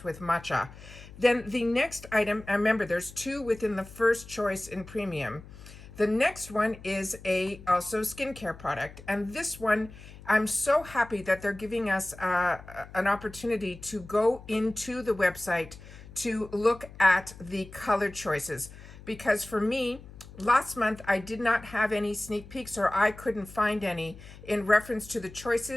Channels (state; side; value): noise; left; hum, 17 dB below the sound